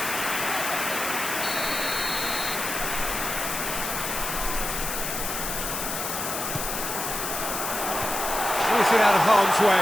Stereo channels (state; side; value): noise; left; hiss, 4 dB below the sound